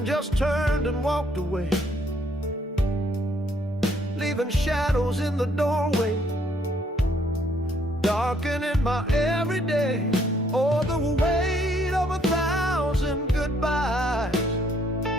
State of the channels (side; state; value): both; normal; correlation 0.67